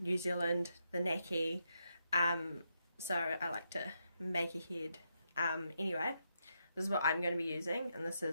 New Zealand, the Naki, so I like to make ahead. Anyway, this is what I'm going to be using, and this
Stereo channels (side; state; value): both; inverted; correlation -0.82